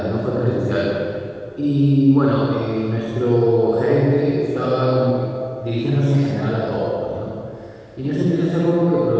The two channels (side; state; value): both; identical; correlation 1.00